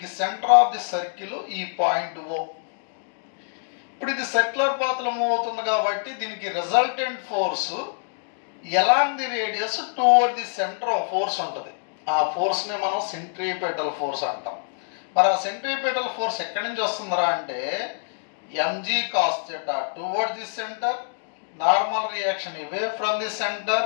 సెంటర్ ఆఫ్ ది సర్కిల్ ఈ పాయింట్ O. ఇప్పుడు ఇది సర్క్యులర్ పాత్ లో మూవ్ అవుతుంది కాబట్టి దీనికి resultant force along the radius towards the centre of force ఉంటుంది. ఆ ఫోర్స్ ని మనం సెంట్రిపెటల్ ఫోర్స్ అంటాం. మరి ఆ సెంట్రిపెటల్ ఫోర్స్ ఎక్కడి నుంచి వస్తుందిరా అంటే mg cos theta towards the centre, normal reaction away from the centre,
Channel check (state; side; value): silent; right; digital silence